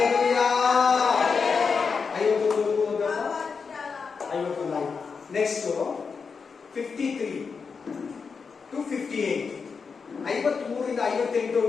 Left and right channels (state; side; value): quieter; right; 5.4 dB